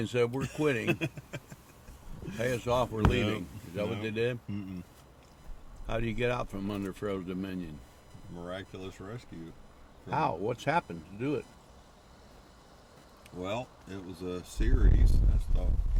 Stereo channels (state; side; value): identical; both; correlation 1.00